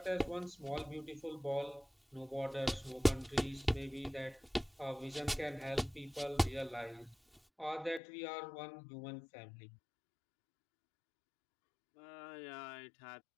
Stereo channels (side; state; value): right; drops out; at 8.0 s